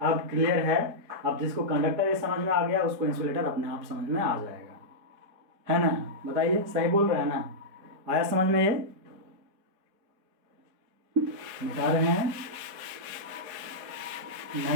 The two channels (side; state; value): left; late; 4.1 ms